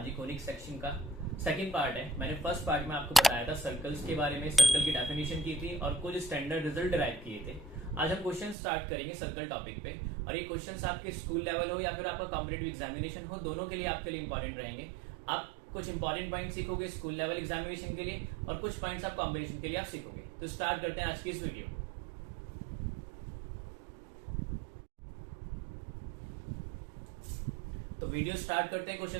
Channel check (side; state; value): left; drops out; at 8.6 s